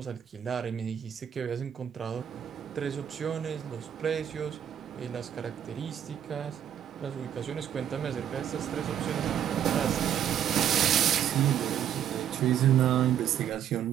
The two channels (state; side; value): quieter; left; 9.7 dB